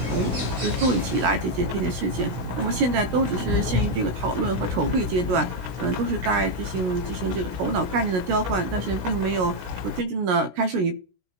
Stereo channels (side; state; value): left; late; 16 ms